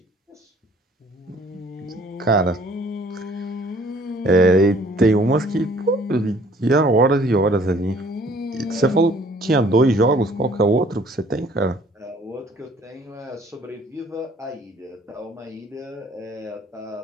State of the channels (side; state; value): both; normal; correlation 0.57